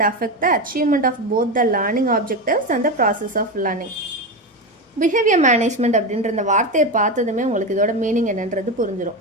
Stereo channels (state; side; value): normal; both; correlation 0.17